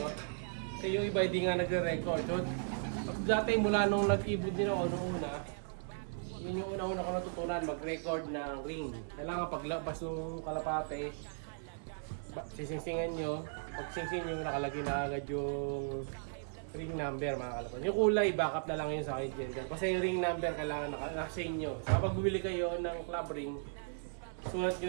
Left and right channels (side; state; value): left; silent; 53 dB below the other